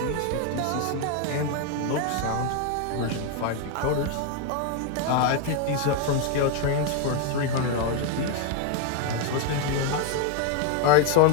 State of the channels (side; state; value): both; different; correlation 0.01